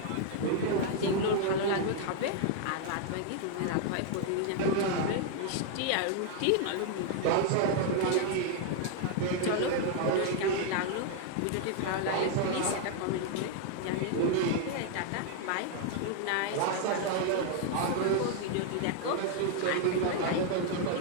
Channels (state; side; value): different; both; correlation 0.00